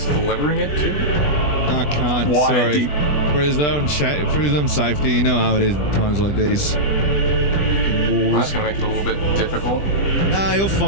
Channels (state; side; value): late; right; 20 ms